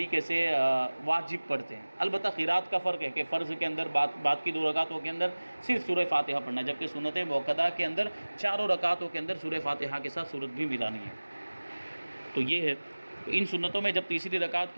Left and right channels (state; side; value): inverted; both; correlation -1.00